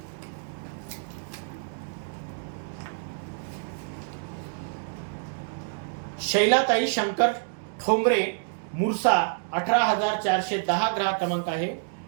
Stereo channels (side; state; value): left; silent; digital silence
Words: शैलाताई शंकर ठोंबरे मुरसा 18,410 ग्राहक क्रमांक आहे.